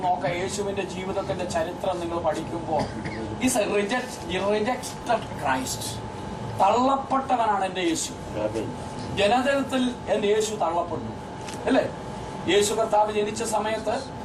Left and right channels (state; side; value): identical; both; correlation 1.00